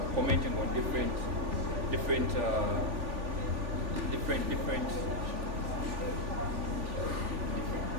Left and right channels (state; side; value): late; left; 3.4 ms